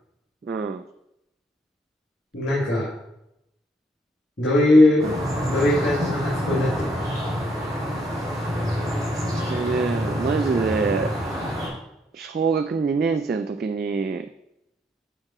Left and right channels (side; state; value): both; normal; correlation 0.72